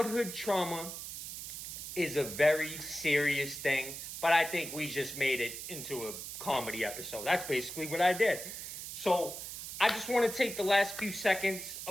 trauma is a very serious thing, but I think we just made it into a comedy episode. That's basically what I did. So I just want to take the last few seconds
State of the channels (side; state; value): right; noise; hiss, 8 dB below the sound